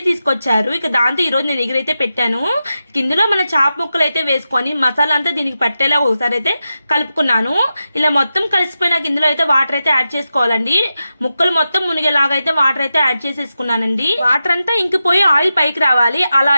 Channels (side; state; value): both; inverted; correlation -0.90